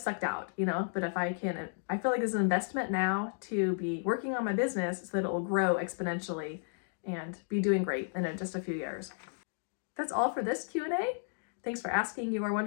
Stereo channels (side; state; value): right; silent; digital silence